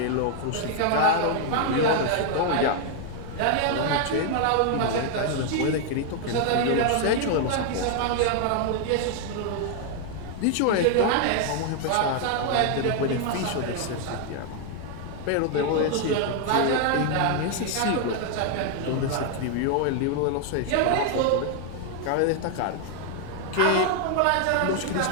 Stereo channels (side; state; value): both; different; correlation 0.00